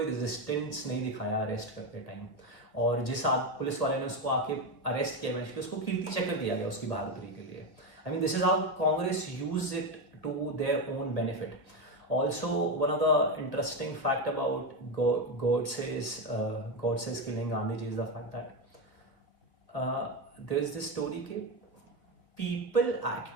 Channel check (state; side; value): late; right; 1.6 ms